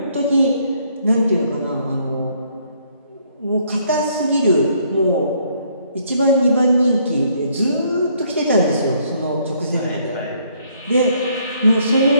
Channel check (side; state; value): both; inverted; correlation -0.67